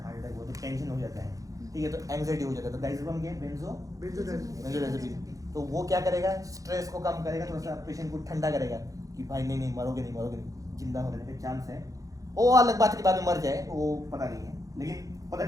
हार्ट अटैक हो तो टेंशन हो जाता है, ठीक है, तो एंग्जाइटी हो जाता है, तो डाइज़ेपम क्या है, बेंजोडाइज़ेपिन। तो वो क्या करेगा, स्ट्रेस को कम करेगा, थोड़ा सा पेशेंट को ठंडा करेगा कि भाई नहीं मरोगे नहीं, जिंदा होने का चांस है। वो अलग बात है कि बाद में मर जाए, वो पता नहीं है, लेकिन फॉर द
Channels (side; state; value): left; late; 0.17 ms